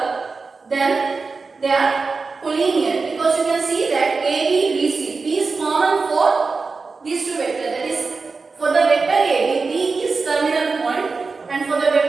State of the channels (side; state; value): left; quieter; 4.3 dB